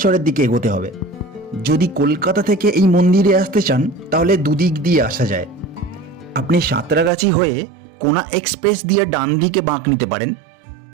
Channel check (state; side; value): drops out; left; at 7.1 s